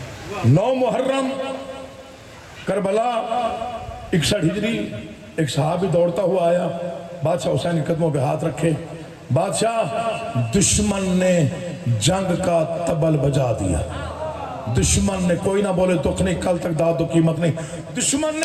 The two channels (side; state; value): both; identical; correlation 1.00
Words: 9 محرم کربلا 61 ہجری، ایک صحابی دوڑتا ہوا آیا، بادشاہ حسین کے قدموں پہ ہاتھ رکھے، بادشاہ دشمن نے جنگ کا طبل بجا دیا۔ دشمن نے، کوئی نہ بولے دکھ نہیں، کل تک داد و قیمت نہیں، دشمن